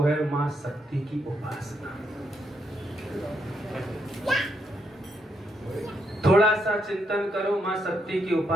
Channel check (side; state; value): both; normal; correlation 0.78